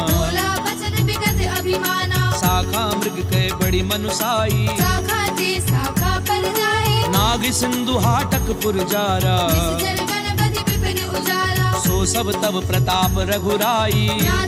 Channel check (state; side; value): identical; both; correlation 1.00